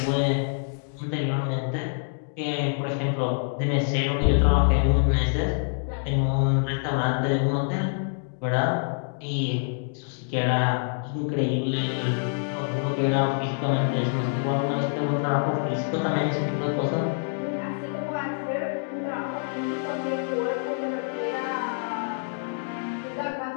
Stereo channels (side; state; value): right; silent; digital silence